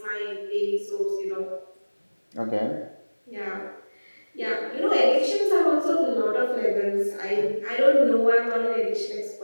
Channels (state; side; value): inverted; both; correlation -1.00